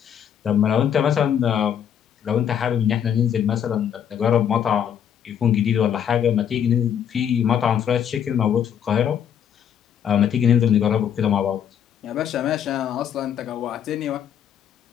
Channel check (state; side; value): quieter; right; 8.9 dB